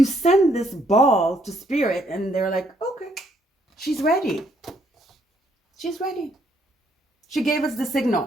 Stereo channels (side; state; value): both; normal; correlation 0.70